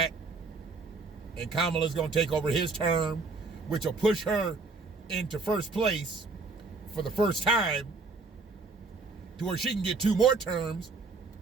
and Kamala's going to take over his term, which will push her into first place for the first time to where she can get 2 more terms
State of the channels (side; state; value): left; quieter; 4.0 dB